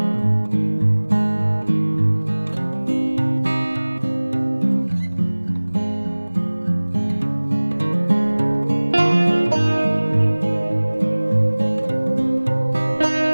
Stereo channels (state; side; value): inverted; both; correlation -1.00